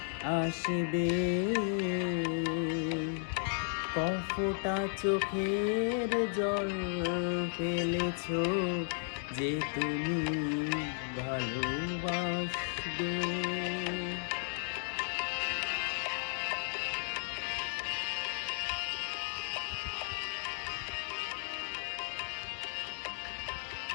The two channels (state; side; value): silent; right; digital silence